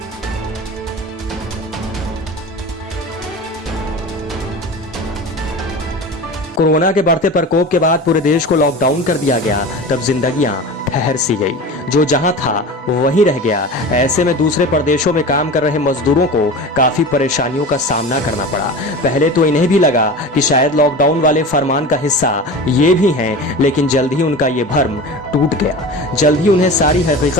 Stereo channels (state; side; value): normal; both; correlation 0.32